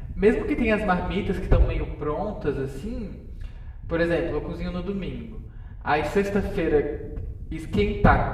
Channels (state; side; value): identical; both; correlation 1.00